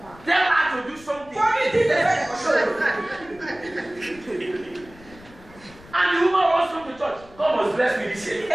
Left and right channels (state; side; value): noise; left; rumble, 22 dB below the sound